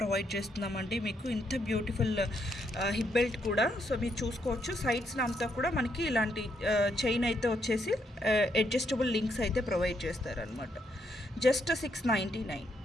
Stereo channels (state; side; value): normal; both; correlation 0.76